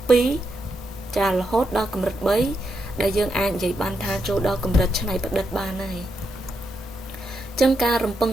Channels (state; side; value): normal; both; correlation 0.83